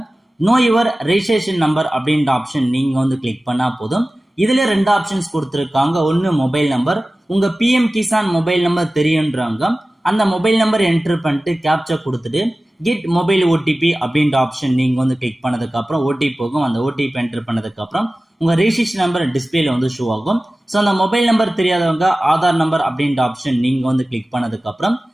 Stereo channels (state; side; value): normal; both; correlation 0.96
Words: நோ யுவர் ரெஜிஸ்ட்ரேஷன் நம்பர் அப்படின்ற ஆப்ஷன் நீங்க கிளிக் பண்ணா போதும். இதுல 2 ஆப்ஷன்ஸ் கொடுத்துருக்காங்க. ஒன்னு மொபைல் நம்பர், உங்க பிஎம் கிசான் மொபைல் நம்பர் தெரியுன்றாங்க. அந்த மொபைல் நம்பர் என்டர் பண்ணிட்டு கேப்சா கொடுத்துட்டு கெட் மொபைல் ஓடிபி அப்படின்ற ஆப்ஷன் நீங்க கிளிக் பண்ணதுக்கு அப்புறம் ஓடிபி போகும். அந்த ஓடிபி என்டர் பண்ணதுக்கு அப்புறம் உங்க ரெஜிஸ்ட்ரேஷன் நம்பர் டிஸ்பிளேல ஷோ ஆகும். ஸோ அந்த மொபைல் நம்பர் தெரியாதவங்க ஆதார் நம்பர் அப்படின்ற ஆப்ஷன் நீங்க கிளிக் பண்ணதுக்கு அப்புறம்